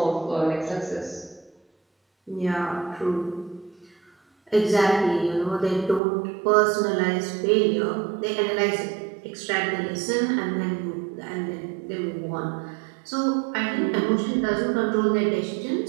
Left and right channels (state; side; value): drops out; left; at 6.0 s